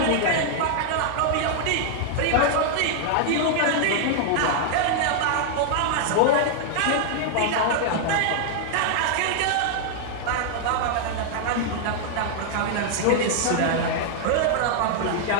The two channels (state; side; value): different; both; correlation -0.01